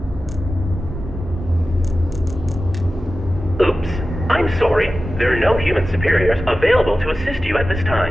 Oops. I'm sorry. There are no human superiors available to assist you at this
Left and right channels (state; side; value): normal; both; correlation 0.94